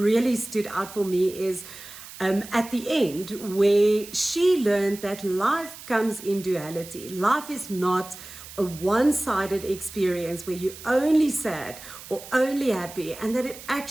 stood out for me is at the end, where she learned that life comes in duality. Life is not a one-sided experience where you're only sad or only happy, and that it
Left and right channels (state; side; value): noise; right; hiss, 15 dB below the sound